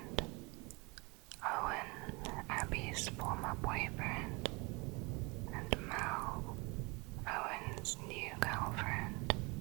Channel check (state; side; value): quieter; left; 27.4 dB